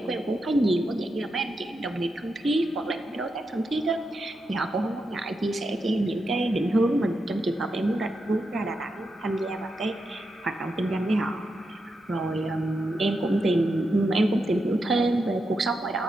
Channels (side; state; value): both; normal; correlation 0.86